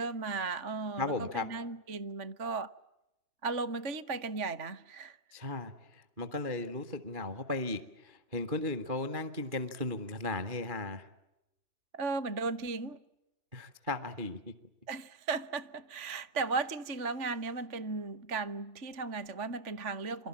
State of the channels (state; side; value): late; left; 3.4 ms